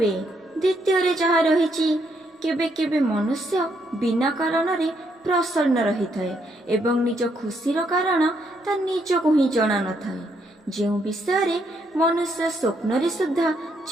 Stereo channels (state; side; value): normal; both; correlation 0.75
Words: द्वितीय रे जहा रहिछि, केबे केबे मनुष्य बिना कारण रे प्रसन्न रही थाए एवं निज खुशीर कारण ता निजको ही जणा न थाए। जो विषय रे मनुष्य स्वप्न रे सुद्धा